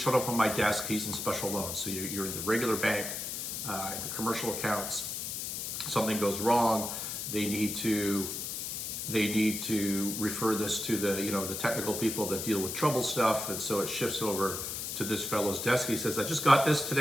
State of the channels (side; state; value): left; noise; hiss, 4 dB below the sound